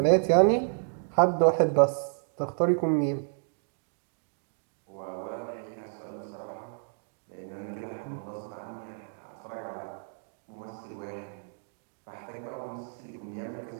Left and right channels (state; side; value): silent; left; 57 dB below the other